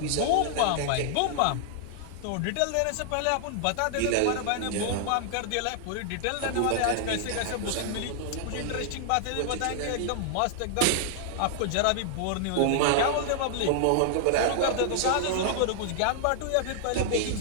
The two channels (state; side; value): different; both; correlation -0.01